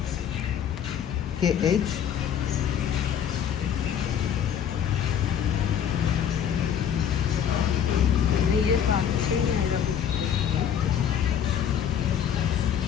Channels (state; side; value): quieter; right; 8.7 dB